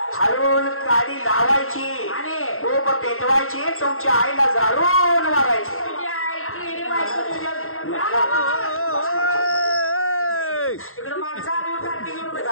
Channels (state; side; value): late; right; 0.62 ms